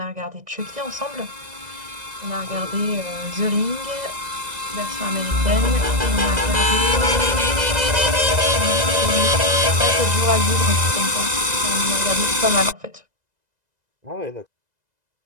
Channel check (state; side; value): late; left; 2.0 ms